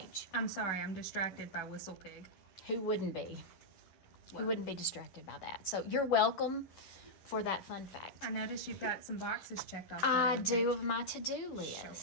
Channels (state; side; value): late; right; 11 ms